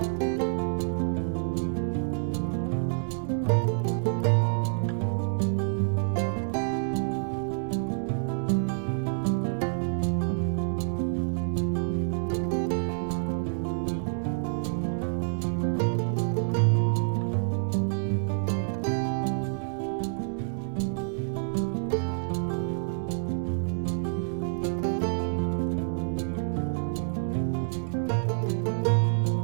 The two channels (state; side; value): silent; left; digital silence